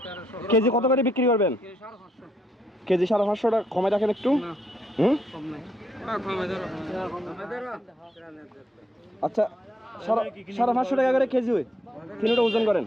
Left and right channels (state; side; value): normal; both; correlation 0.76